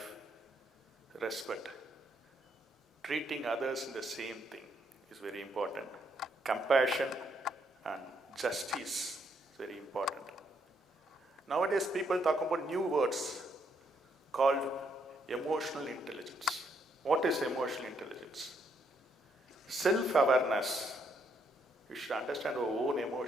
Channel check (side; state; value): both; normal; correlation 0.74